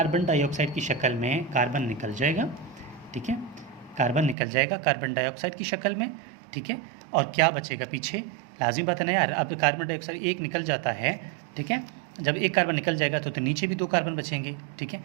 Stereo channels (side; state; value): left; drops out; at 4.4 s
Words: डाइऑक्साइड की शक्ल में कार्बन निकल जाएगा, ठीक है, कार्बन निकल जाएगा कार्बन डाइऑक्साइड की शक्ल में, ठीक है। और क्या बचेगा पीछे, लाजिम बात है ना यार, अब कार्बन डाइऑक्साइड एक निकल जाता है, ठीक है, जब एक कार्बन निकल जाएगा तो नीचे भी 2 कार्बन बचेंगे, ठीक है।